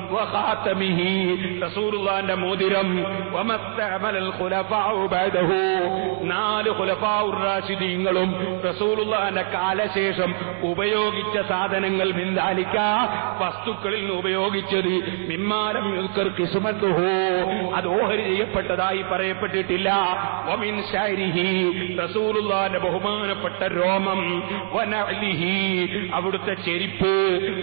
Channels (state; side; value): silent; left; 63 dB below the other